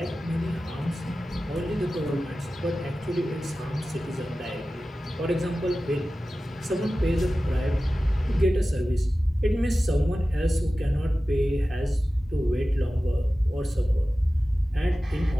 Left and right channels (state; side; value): normal; both; correlation 0.95